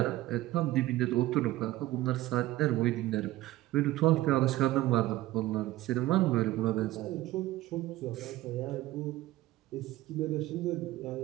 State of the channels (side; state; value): left; quieter; 16.5 dB